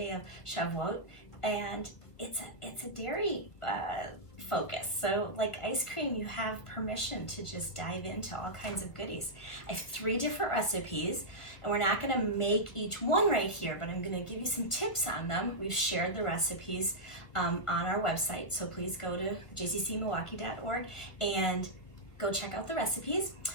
of Shavout, and it's a dairy focus. So like ice cream, you have permission to just dive into all kinds of goodies. I have 3 different recipes, and we're not gonna make each one right here, but I'm gonna give you some tips on them. We've shared the recipes on our website, so please go to jccmilwaukee.org and go check out the recipes.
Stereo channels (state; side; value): late; right; 1.6 ms